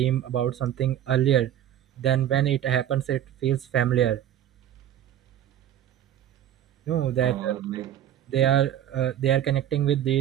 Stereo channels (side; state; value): left; quieter; 11.0 dB